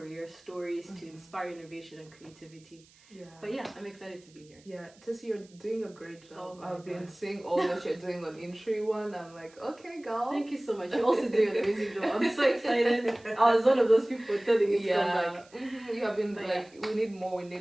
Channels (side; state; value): right; noise; hiss, 27 dB below the sound